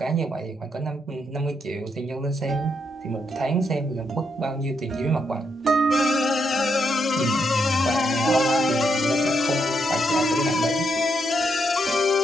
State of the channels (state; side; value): normal; both; correlation 0.78